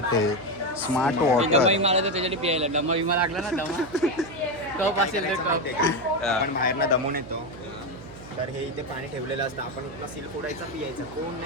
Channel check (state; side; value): noise; right; hum, 17 dB below the sound